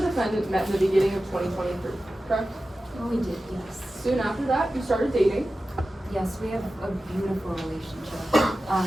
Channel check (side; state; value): both; normal; correlation 0.94